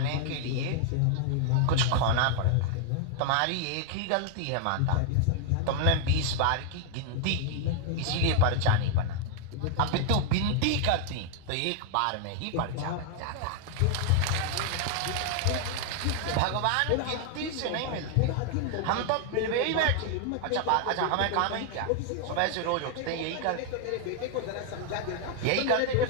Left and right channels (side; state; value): both; different; correlation 0.00